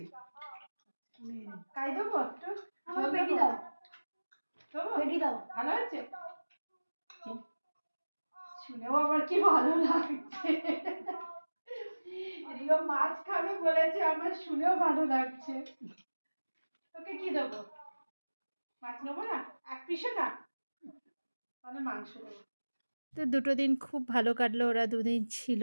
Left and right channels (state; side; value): inverted; both; correlation -1.00